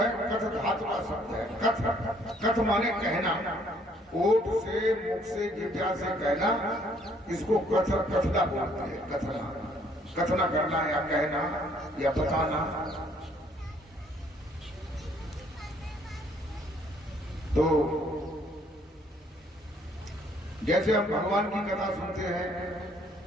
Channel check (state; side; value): normal; both; correlation 0.64